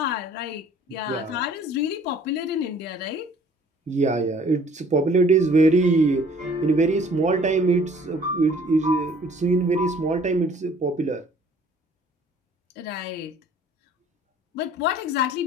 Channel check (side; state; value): both; normal; correlation 0.55